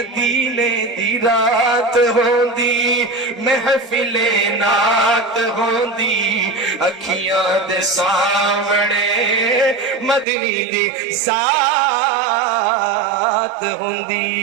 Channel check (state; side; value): drops out; left; at 10.2 s